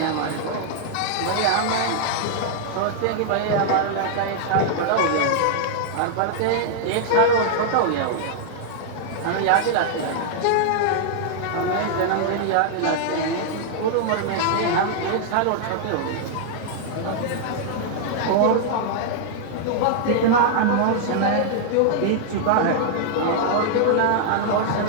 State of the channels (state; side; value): different; both; correlation -0.01